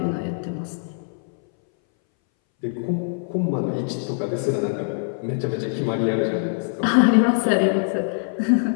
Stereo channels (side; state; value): right; silent; 61 dB below the other